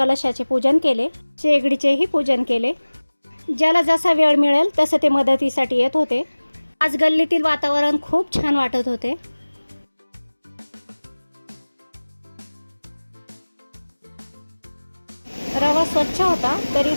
पूजन केले, शेगडीचेही पूजन केले. ज्याला जसा वेळ मिळेल तसं ते मदतीसाठी येत होते. आज गल्लीतील वातावरण खूप छान वाटत होते. रवा स्वच्छ होता तरी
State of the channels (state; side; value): inverted; both; correlation -1.00